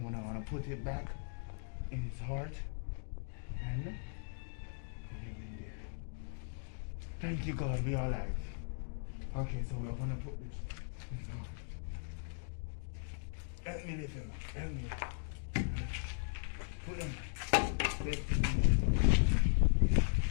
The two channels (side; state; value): right; silent; digital silence